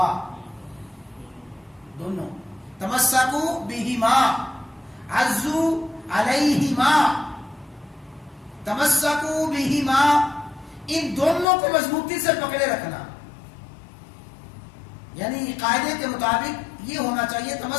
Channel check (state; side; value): drops out; right; at 11.5 s